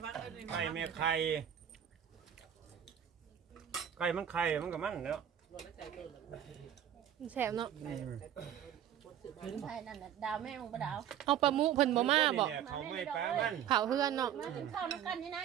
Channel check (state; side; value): quieter; left; 10.0 dB